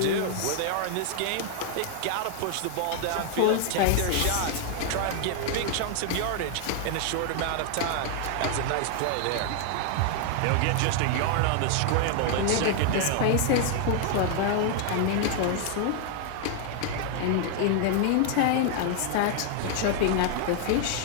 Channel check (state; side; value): different; both; correlation 0.00